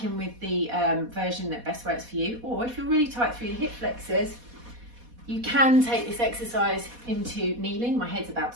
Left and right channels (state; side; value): late; left; 4.2 ms